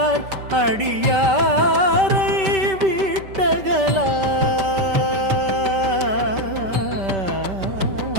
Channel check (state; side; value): late; left; 5.2 ms